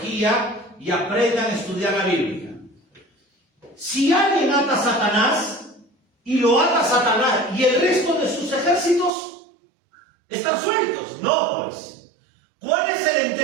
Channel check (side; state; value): left; drops out; at 9.1 s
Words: y aprendan a estudiar la Biblia. Si alguien ata a Satanás y lo ata a Satanás y el resto de sus ejércitos están sueltos, no pues. ¿Cuál es el